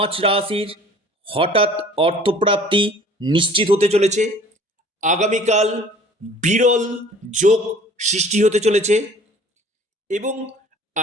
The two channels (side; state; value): both; normal; correlation 0.50